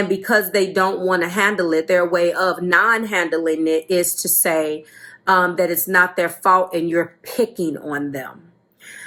because they don't want to handle it, their way of non-handling it is to say that it's not their fault and you're picking on them.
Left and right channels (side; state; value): both; identical; correlation 1.00